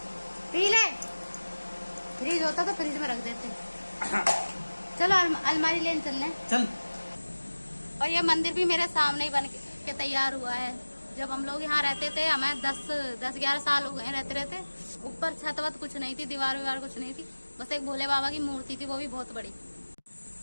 पी ले। फ्रिज होता तो फ्रिज में रख देते। चलो अलमारी लेने चलने चल। और ये मंदिर भी मेरे सामने ही बन के तैयार हुआ है। जब हम लोग यहाँ रहते थे, हमें 10-11 साल हो गए रहते रहते। ऊपर छत वत कुछ नहीं थी, दीवार विवार कुछ नहीं थी, बस एक भोले बाबा की मूर्ति थी, वो भी बहुत बड़ी।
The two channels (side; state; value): both; inverted; correlation -1.00